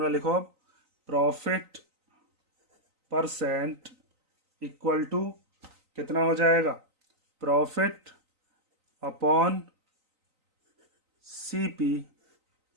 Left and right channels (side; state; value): left; late; 3.9 ms